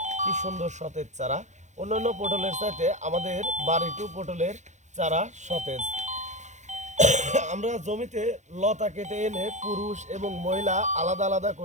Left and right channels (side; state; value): left; late; 0.34 ms